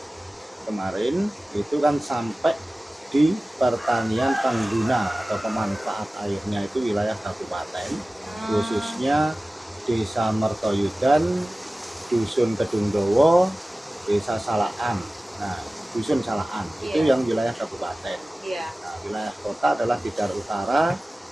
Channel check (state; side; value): normal; both; correlation 0.97